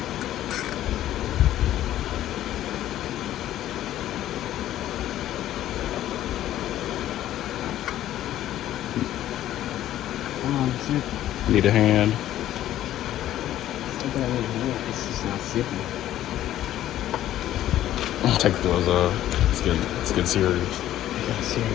Come on, zip. Need a hand. It's not that I need a hand, it's just not zippy. Take the gloves off. It's getting serious. I got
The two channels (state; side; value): quieter; right; 12.8 dB